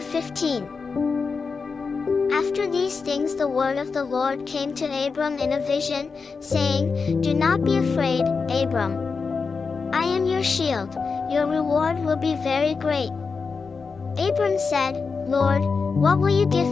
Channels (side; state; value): right; quieter; 4.9 dB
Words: After these things the word of the Lord came to Abram in a vision, saying, Do not be afraid, Abram. I am your shield, your reward will be very great. Abram said, Lord, what will you give